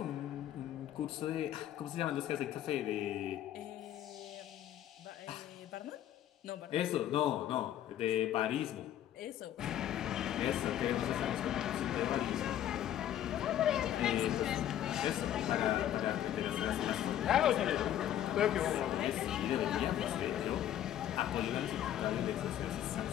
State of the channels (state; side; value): quieter; right; 11.4 dB